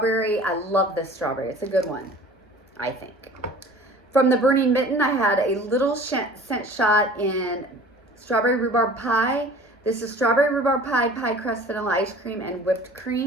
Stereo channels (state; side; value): normal; both; correlation 0.45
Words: I love this strawberry. It's a good one, I think. From the Burning Mitten, I had a little scent shot in strawberry rhubarb pie. This is strawberry rhubarb pie, pie crust, vanilla ice cream, and whipped